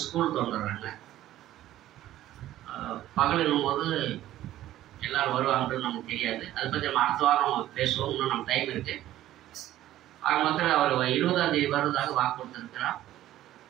ஸ்கூல் வந்துடுறாங்க. பகலும் போது எல்லோரும் வருவாங்கன்னு நமக்கு தெரியாது. அதை பற்றி நம்ம அடுத்த வாரம் பேசுவோம். இன்னும் நம்ம டைம் இருக்குது. ஆக மொத்தத்தில் அவர் 20ஆம் தேதி வருவதாக வாக்கு கொடுத்துருக்கிறார்.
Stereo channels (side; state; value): left; quieter; 13.8 dB